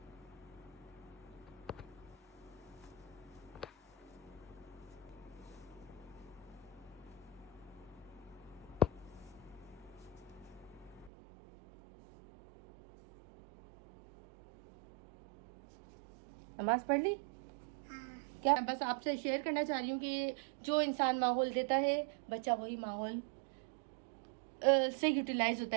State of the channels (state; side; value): drops out; left; at 11.1 s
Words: नमाज पढ़ ली? क्या बस आपसे शेयर करना चाह रही हूँ कि जो इंसान माहौल देता है, बच्चा वही माहौल से यूटिलाइज होता